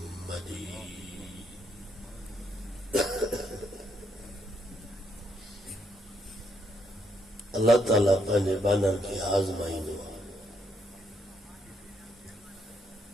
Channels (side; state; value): both; normal; correlation 0.74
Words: مجيد. اللہ تعالیٰ پہلے بانا کی آزمائی نو